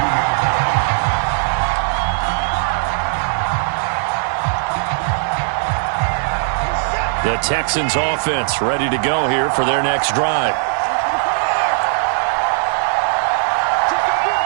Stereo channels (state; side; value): silent; left; digital silence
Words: The Texans offense ready to go here for their next drive.